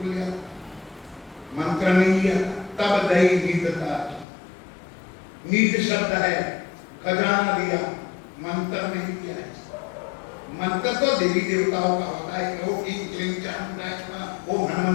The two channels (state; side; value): drops out; right; at 4.2 s